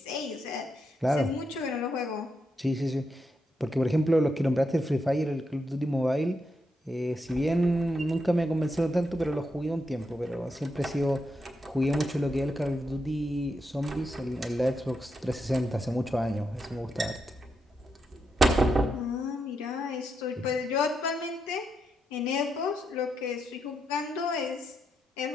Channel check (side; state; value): both; normal; correlation 0.83